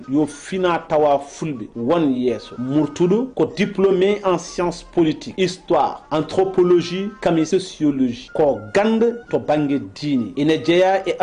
yo fina tawa fulɓe won yeeso murtuɗo ko diplômé en sciences politiques histoire anthropologie kami sociologie ko gande to banggue diine ina jeeya e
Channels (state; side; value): identical; both; correlation 1.00